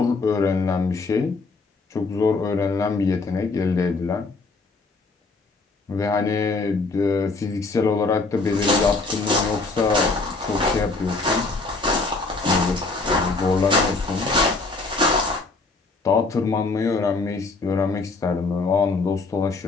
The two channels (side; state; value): right; quieter; 3.7 dB